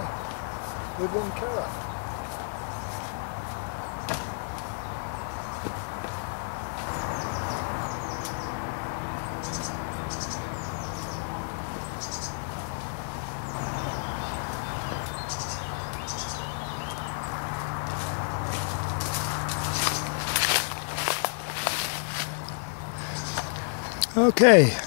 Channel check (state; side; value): silent; right; digital silence